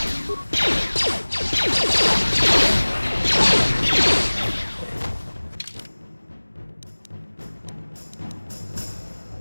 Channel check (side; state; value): both; inverted; correlation -1.00